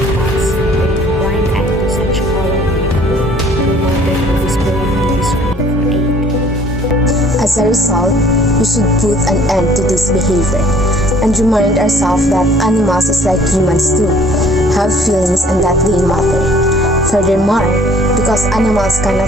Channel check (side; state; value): both; normal; correlation 0.57